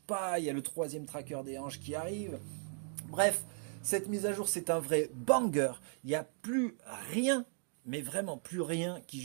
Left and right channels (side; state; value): left; silent; 53 dB below the other